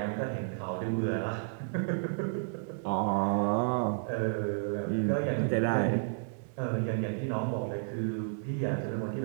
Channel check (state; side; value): silent; left; digital silence